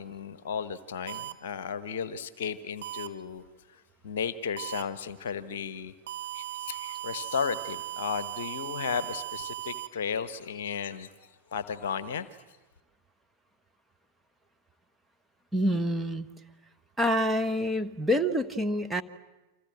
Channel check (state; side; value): normal; both; correlation 0.13